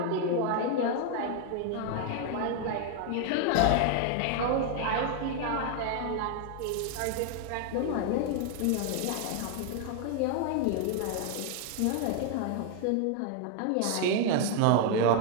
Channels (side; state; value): both; different; correlation 0.00